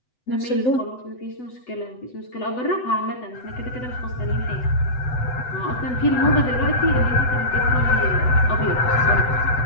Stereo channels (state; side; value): late; right; 8.0 ms